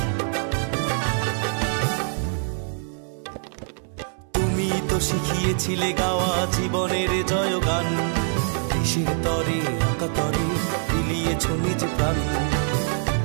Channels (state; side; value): silent; left; 62 dB below the other